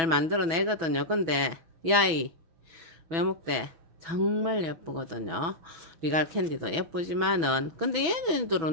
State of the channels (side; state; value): left; late; 6.1 ms